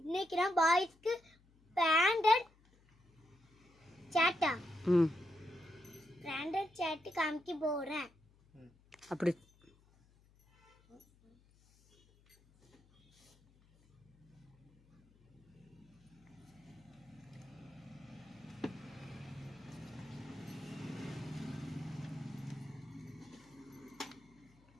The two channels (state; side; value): noise; left; hum, 29 dB below the sound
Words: நான் பாய்ஸ்க்கு பிராண்டட் சேட்டா பிராண்டட் சேட்டு காமிக்க போகிறேன். அப்படி